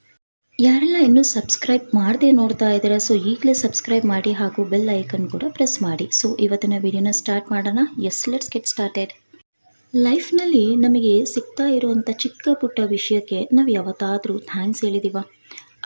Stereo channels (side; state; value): both; inverted; correlation -1.00